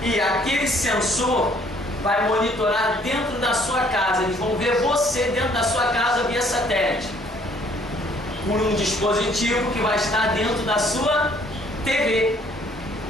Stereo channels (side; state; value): both; normal; correlation 0.61